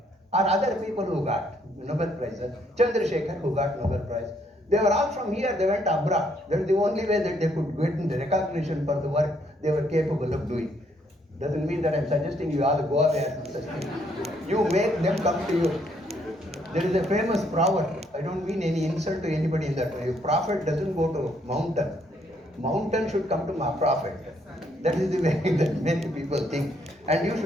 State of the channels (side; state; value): both; normal; correlation 0.70